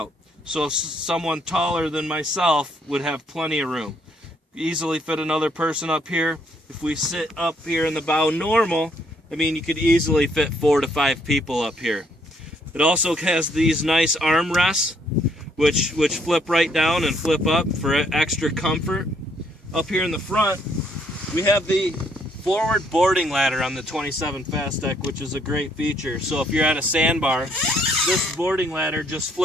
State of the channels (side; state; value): both; normal; correlation 0.69